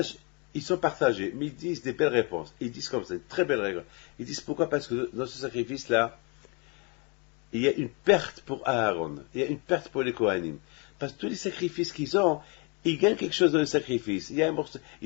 ils sont partagés, mais ils disent des belles réponses. Ils disent comme ça, une très belle règle. Ils disent pourquoi? Parce que dans ce sacrifice-là, il y a une perte pour Aaron, il y a une perte pour les Kohanim. Parce que tous les sacrifices qu'ils ont, ils gagnent quelque chose dans le sacrifice. Il y a un morceau,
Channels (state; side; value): quieter; right; 32.4 dB